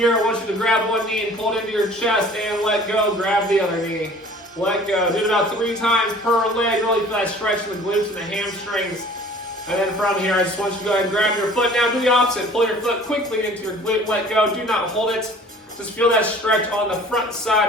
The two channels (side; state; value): both; normal; correlation 0.49